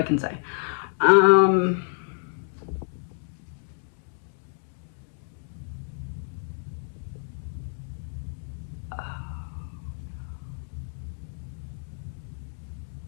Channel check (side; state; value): right; silent; digital silence